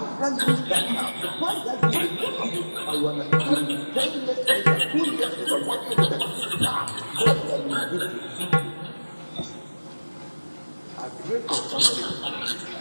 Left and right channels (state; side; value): inverted; both; correlation -1.00